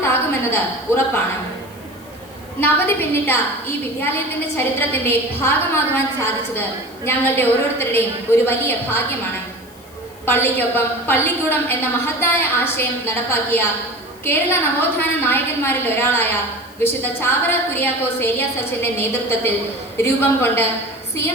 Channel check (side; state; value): left; noise; hiss, 25 dB below the sound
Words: ഉറപ്പാണ്. നവതി പിന്നിട്ട ഈ വിദ്യാലയത്തിന്റെ ചരിത്രത്തിന്റെ ഭാഗമാകുവാൻ സാധിച്ചത് ഞങ്ങളുടെ ഓരോരുത്തരുടെയും ഒരു വലിയ ഭാഗ്യമാണ്. പള്ളിക്കൊപ്പം പള്ളിക്കൂടം എന്ന മഹത്തായ ആശയം നടപ്പാക്കിയ കേരള നവോത്ഥാന നായകന്മാരിൽ ഒരാളായ വിശുദ്ധ ചാവറ കുര്യാക്കോസ് ഏലിയാസ് അച്ഛന്റെ നേതൃത്വത്തിൽ രൂപം കൊണ്ട്